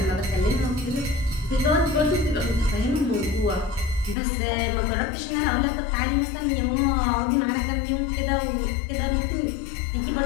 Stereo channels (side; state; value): right; drops out; at 4.2 s